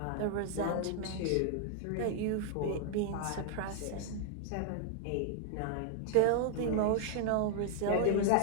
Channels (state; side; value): different; both; correlation 0.00